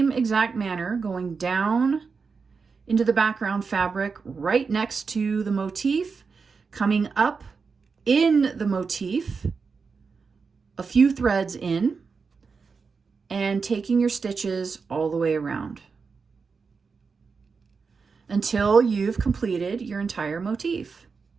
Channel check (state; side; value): quieter; left; 5.1 dB